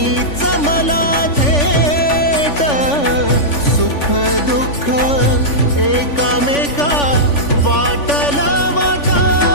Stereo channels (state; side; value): late; right; 3.5 ms